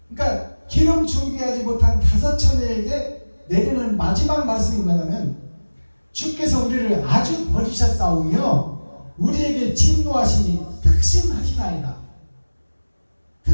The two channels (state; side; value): inverted; both; correlation -1.00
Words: 그러니까 기름 준비하지 못한 5 처녀에게 내리는 마지막 말씀이 뭐냐면, 주께서 우리를 아주 버리셨사오며 우리에게 진노하시니 특심하시나이다.